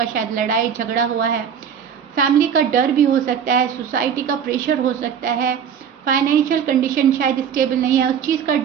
शायद लड़ाई झगड़ा हुआ है, फैमिली का डर भी हो सकता है, सोसाइटी का प्रेशर हो सकता है, फाइनेंशियल कंडीशन शायद स्टेबल नहीं है, उस चीज़ का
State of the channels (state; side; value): quieter; left; 7.9 dB